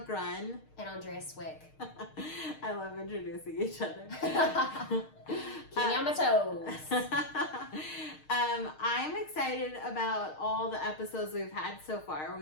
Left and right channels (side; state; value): right; late; 6.5 ms